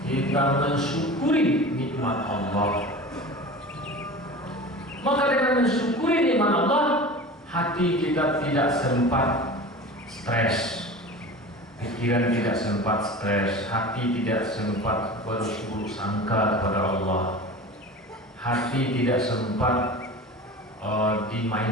kita mensyukuri nikmat Allah. Maka dengan mensyukuri nikmat Allah, hati kita tidak sempat stres, pikiran tidak sempat stres, hati tidak sempat berburuk sangka kepada Allah. Hati tidak sempat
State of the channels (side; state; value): both; normal; correlation 0.35